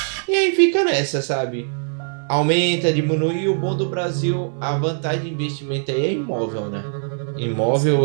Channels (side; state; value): left; silent; digital silence